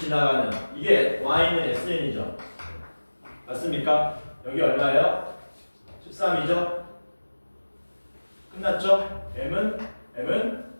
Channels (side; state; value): both; inverted; correlation -1.00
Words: 이게 y는 sn이죠. 맞습니까? 여기 얼마예요? 13이죠? 끝났죠? m은